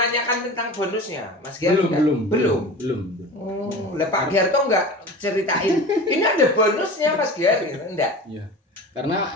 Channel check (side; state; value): both; normal; correlation 0.34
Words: tentang bonusnya, Mas Giar? Belum. Lah Pak Giar tuh enggak ceritain. Ini ada bonusnya Mas Giar gitu, enggak? Iya. Karena